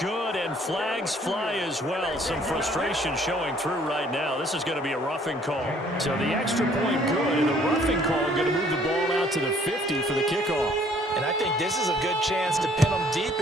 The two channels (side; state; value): both; normal; correlation 0.60